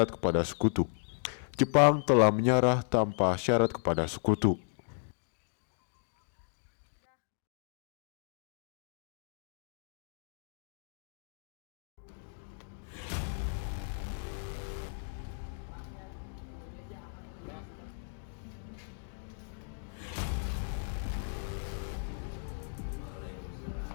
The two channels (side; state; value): right; silent; digital silence